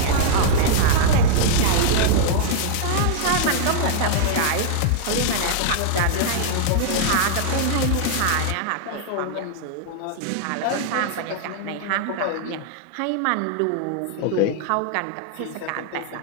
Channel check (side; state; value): both; different; correlation -0.01